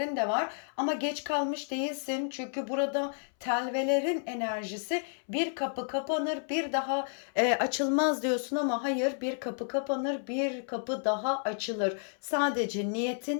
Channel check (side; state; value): right; silent; 57 dB below the other